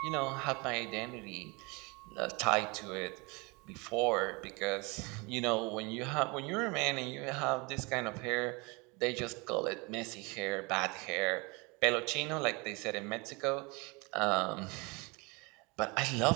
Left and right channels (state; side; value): quieter; left; 27.7 dB